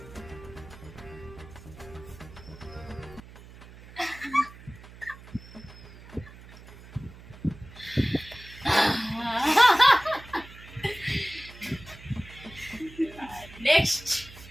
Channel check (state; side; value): noise; right; hum, 18 dB below the sound